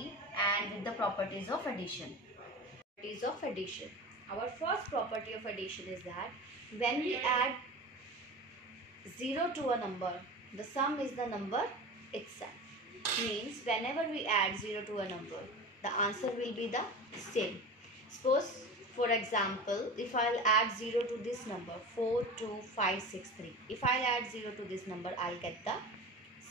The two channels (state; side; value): normal; both; correlation 0.31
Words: and with the properties of addition. Properties of addition. Our first property of addition is that when we add 0 to a number, the sum is the number itself. Means whenever we add 0 to a number, the answer will be the same. Suppose, for example, if I'll add 0 to this number 42563, if I'll add 0 to this number, I'll get the